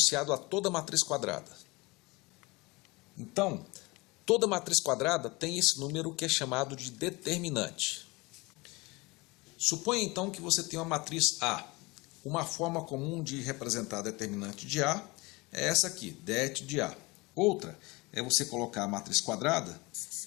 a toda matriz quadrada. Então, toda matriz quadrada tem esse número que é chamado de determinante. Suponha então que você tem uma matriz A. Uma forma comum de representar determinante de A é essa aqui, det de A. Outra é você colocar a matriz quadrada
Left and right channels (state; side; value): quieter; right; 24.4 dB